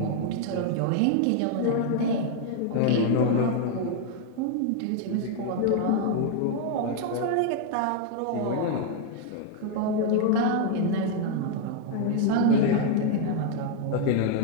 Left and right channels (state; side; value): different; both; correlation 0.00